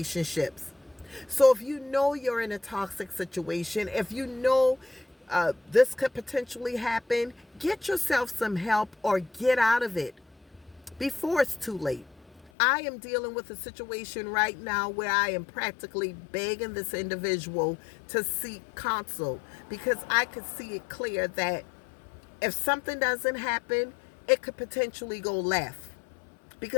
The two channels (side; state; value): right; drops out; at 12.5 s